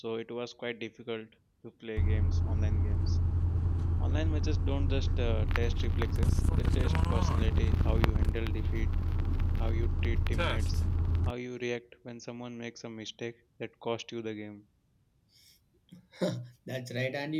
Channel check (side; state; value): both; identical; correlation 1.00